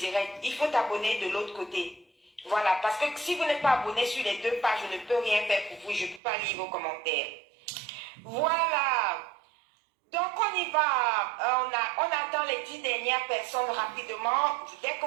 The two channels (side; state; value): left; drops out; at 6.2 s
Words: Il faut t'abonner de l'autre côté. Voilà, parce que si vous n'êtes pas abonné sur les deux pages, je ne peux rien faire pour vous. Je ne peux pas lire vos commentaires. Voilà. Donc on y va. On attend les 10 dernières personnes rapidement. Dès que